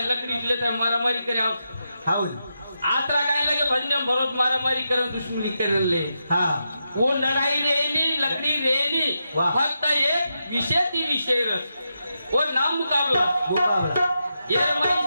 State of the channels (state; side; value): inverted; both; correlation -0.86